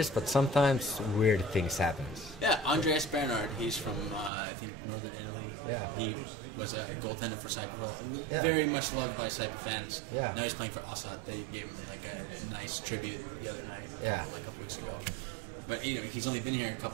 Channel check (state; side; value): drops out; left; at 4.3 s